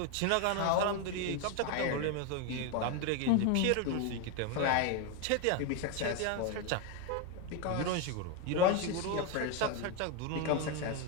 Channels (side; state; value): both; different; correlation 0.02